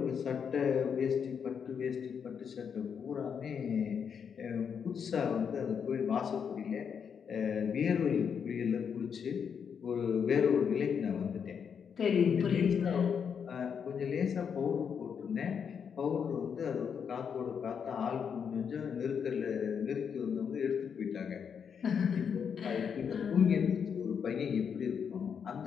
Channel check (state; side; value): quieter; right; 7.1 dB